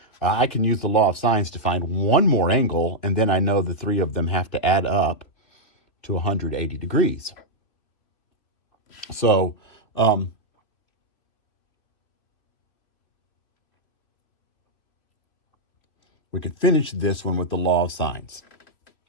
I can use the law of sines to find one more angle, and then I know the 3 of them have to add up to 180 degrees. So, we could finish this one with the law of sines.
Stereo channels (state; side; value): late; right; 2.9 ms